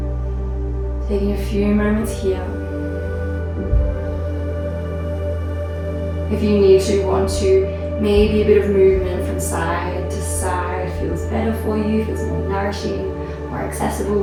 Taking a few moments here. If you need to, want to, maybe a bit of movement from side to side feels better for you, feels more nourishing, more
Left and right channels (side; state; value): both; identical; correlation 1.00